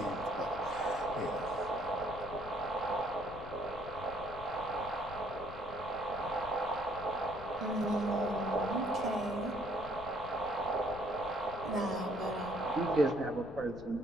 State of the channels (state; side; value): noise; left; rumble, 14 dB below the sound